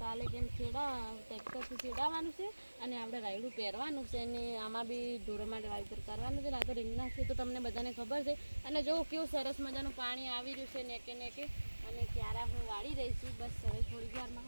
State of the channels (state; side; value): inverted; both; correlation -1.00